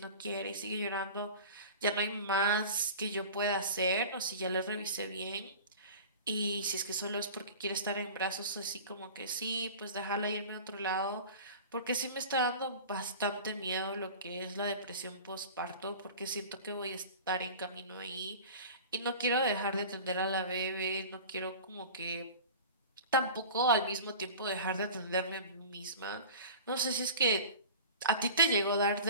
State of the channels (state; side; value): inverted; both; correlation -0.37